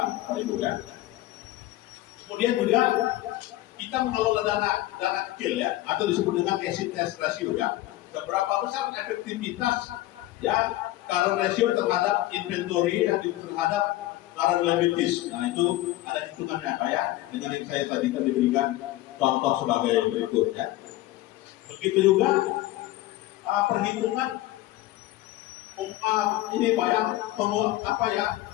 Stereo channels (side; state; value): right; quieter; 16.5 dB